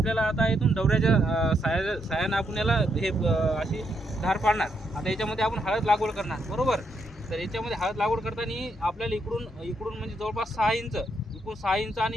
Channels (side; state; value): both; normal; correlation 0.77